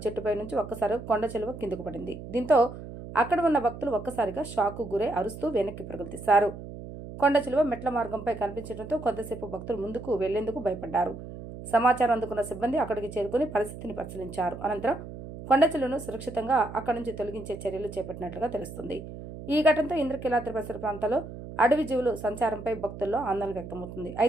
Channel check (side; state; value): right; noise; hum, 12 dB below the sound